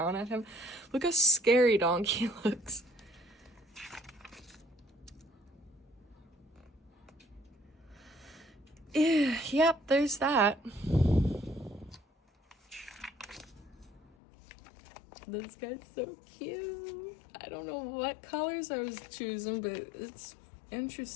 at him. Look how scary Donkey looks. Yep, there's that. This guy's so cute. I don't know what colors I was choosing, but it's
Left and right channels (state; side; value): drops out; right; at 14.1 s